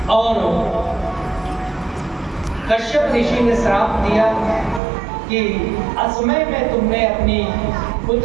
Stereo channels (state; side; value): drops out; left; at 4.8 s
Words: और कश्यप ऋषि ने श्राप दिया कि असमय में तुमने अपनी